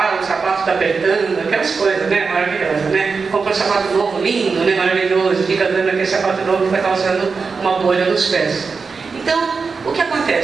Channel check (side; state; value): left; quieter; 4.9 dB